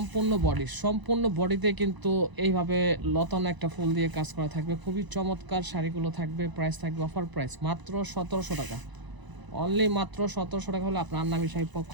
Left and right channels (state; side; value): late; left; 1.0 ms